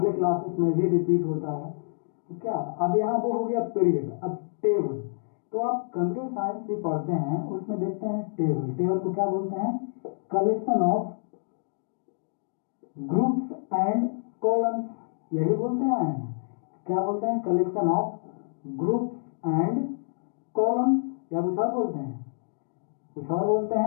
क्लासेस में भी रिपीट होता है। तो क्या अब यहाँ वो हो गया पीरियड। अब टेबल, तो आप कंप्यूटर साइंस भी पढ़ते हैं, उसमें देखते हैं टेबल। टेबल को क्या बोलते हैं, collection of groups and columns, यही बोलते आए हैं ना, क्या बोलते हैं, collection of groups and columns, या कुछ और बोलते हैं, कुछ और बोलते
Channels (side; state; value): right; silent; 60 dB below the other